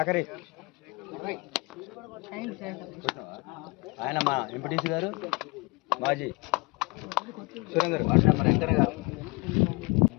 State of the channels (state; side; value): quieter; right; 27.2 dB